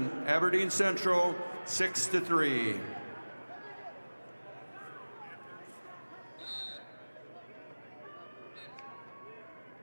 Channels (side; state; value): both; inverted; correlation -1.00